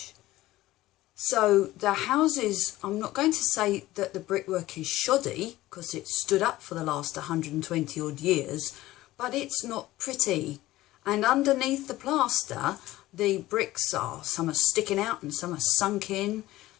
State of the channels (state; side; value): quieter; right; 16.6 dB